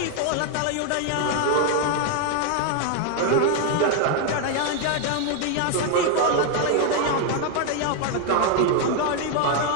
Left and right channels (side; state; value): both; different; correlation 0.00